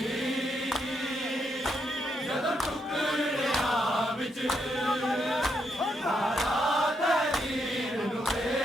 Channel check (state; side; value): normal; both; correlation 0.79